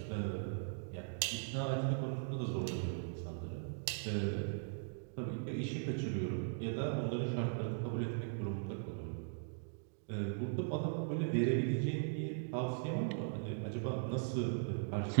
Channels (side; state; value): left; silent; digital silence